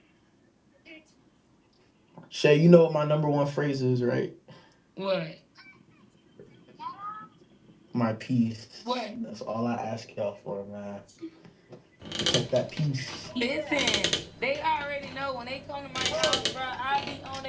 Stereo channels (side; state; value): both; identical; correlation 1.00